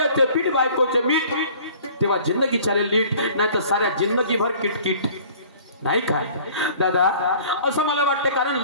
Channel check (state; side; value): inverted; both; correlation -0.50